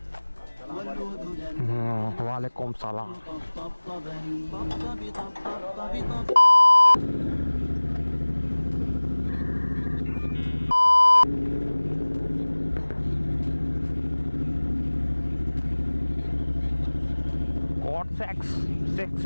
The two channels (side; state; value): both; inverted; correlation -1.00